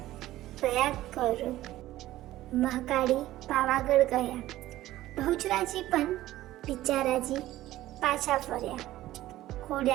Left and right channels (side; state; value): left; quieter; 15.3 dB